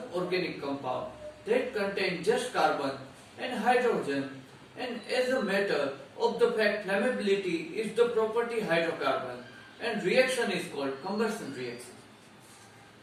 organic compound that contain just carbon and hydrogen, and as a matter of the fact flammability is the property hydrocarbon and reaction is called combustion reaction.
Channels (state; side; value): identical; both; correlation 1.00